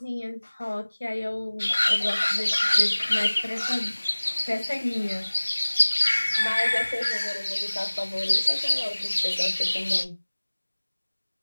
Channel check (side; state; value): both; inverted; correlation -1.00